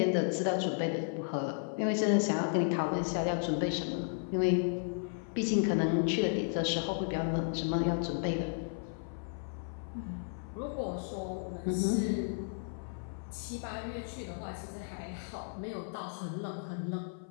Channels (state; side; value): silent; right; 55 dB below the other